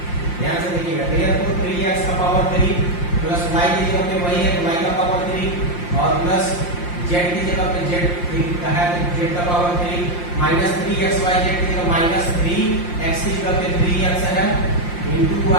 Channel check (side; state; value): right; late; 5.7 ms